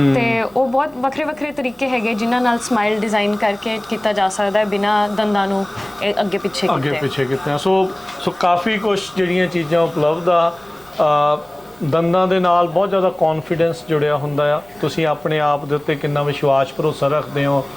ਤੇ ਉਹ ਬਹੁਤ ਵੱਖਰੇ ਵੱਖਰੇ ਤਰੀਕੇ ਹੈਗੇ ਜਿਨ੍ਹਾਂ ਨਾਲ ਸਮਾਈਲ ਡਿਜ਼ਾਈਨ ਕਰਕੇ ਕੀਤਾ ਜਾ ਸਕਦਾ ਹੈ ਬਿਨਾਂ ਦੰਦਾਂ ਨੂੰ ਅੱਗੇ ਪਿੱਛੇ ਕੀਤੇ। ਸੋ ਕਾਫੀ ਕੁਝ ਜਿਹੜੀਆਂ ਚੀਜ਼ਾਂ ਉਪਲਬਧ ਆ। ਦੰਦਾਂ ਦੇ ਨਾਲ ਬਹੁਤ ਜ਼ਿਆਦਾ ਕੌਨਫੀਡੈਂਸ ਜੁੜਿਆ ਹੁੰਦਾ ਆ, ਤੁਸੀਂ ਆਪਣੇ ਆਪ ਦੇ ਉੱਤੇ ਕਿੰਨਾ ਵਿਸ਼ਵਾਸ ਭਰੋਸਾ ਰੱਖਦੇ ਹੋ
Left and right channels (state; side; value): noise; right; rumble, 28 dB below the sound